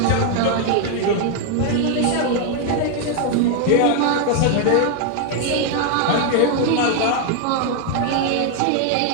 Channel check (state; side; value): different; both; correlation 0.00